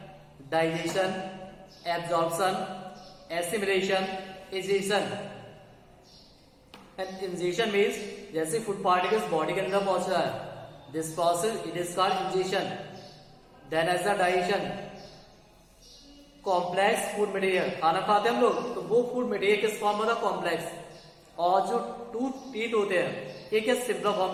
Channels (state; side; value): identical; both; correlation 1.00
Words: digestion, absorption, assimilation, egestion. And ingestion means जैसे फूड पार्टिकल्स बॉडी के अंदर पहुंच रहा है, this process it is called ingestion. Then as the digestion, complex food material, खाना खाते हैं हम लोग, तो वो फूड मटेरियल किस फॉर्म में था, कॉम्प्लेक्स, और जो टूथ टीथ होते हैं ये किस सिंपल